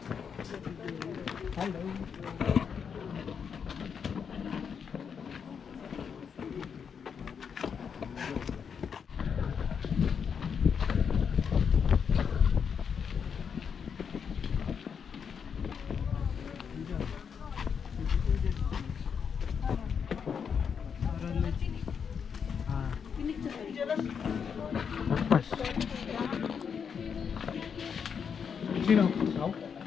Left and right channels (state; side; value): quieter; right; 6.8 dB